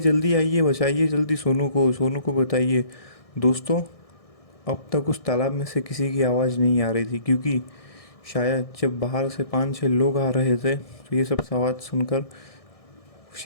आइए, बचाइए जल्दी सोनू को, सोनू को बताइए। दोस्तों अब तक उस तालाब में से किसी की आवाज़ नहीं आ रही थी, क्योंकि शायद जब बाहर से 5-6 लोग आ रहे थे तो ये सब आवाज़ सुनकर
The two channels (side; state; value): right; late; 1.6 ms